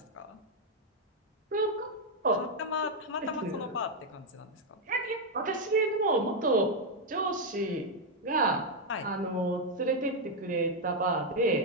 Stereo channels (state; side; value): normal; both; correlation 0.00